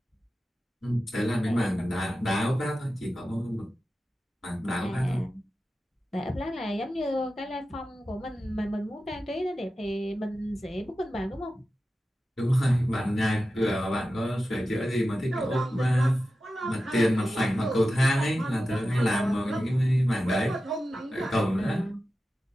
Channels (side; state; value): both; normal; correlation 0.93